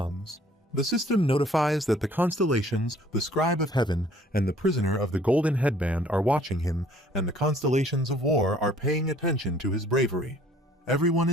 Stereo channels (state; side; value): normal; both; correlation 0.57